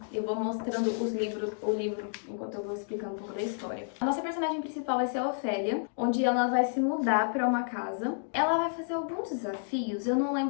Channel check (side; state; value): right; silent; digital silence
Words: Eu vou mostrando o livro, enquanto eu vou explicando um pouco da história. A nossa personagem principal vai ser a Ofélia, onde ela vai se mudar pra uma casa. Ela vai fazer alguns desafios, eu não